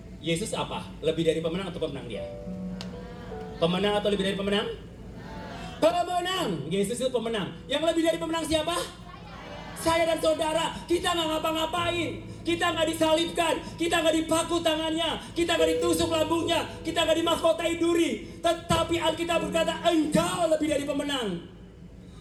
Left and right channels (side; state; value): both; identical; correlation 1.00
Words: Yesus apa? Lebih dari pemenang atau pemenang dia? Pemenang atau lebih dari pemenang? Pemenang. Yesus itu pemenang. Yang lebih dari pemenang siapa? Saya dan saudara. Kita nggak ngapa-ngapain. Kita nggak disalibkan. Kita nggak dipaku tangannya. Kita nggak ditusuk lambungnya. Kita nggak dimahkotai duri. Tetapi Alkitab berkata engkau lebih dari pemenang.